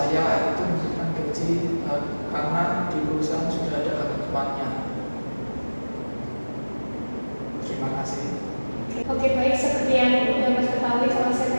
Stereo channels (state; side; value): inverted; both; correlation -1.00